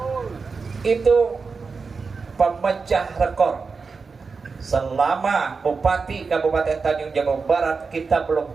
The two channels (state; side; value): quieter; left; 4.7 dB